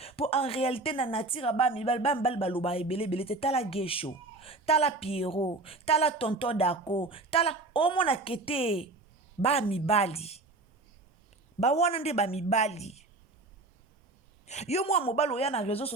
pour en réalité na natira ba mibal baloba ebele te tala gesho. Tala Pierrot, tala tonton Dako, tala omona kete ba mibali. Ba wana nde ba mibali. Yo mwa mobali oya na réseau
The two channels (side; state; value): left; quieter; 3.2 dB